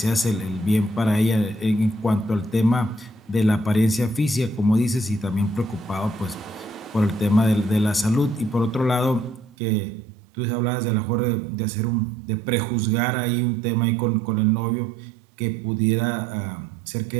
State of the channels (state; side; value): drops out; left; at 9.5 s